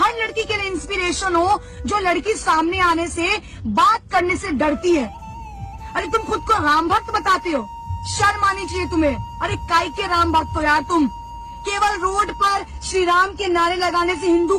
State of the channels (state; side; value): identical; both; correlation 1.00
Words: लड़की के लिए इंस्पिरेशन हो जो लड़की सामने आने से, बात करने से डरती है। अरे तुम खुद को राम भक्त बताते हो, शर्म आनी चाहिए तुम्हें। अरे काय के राम भक्त हो यार तुम? केवल रोड पर श्री राम के नारे लगाने से, हिंदू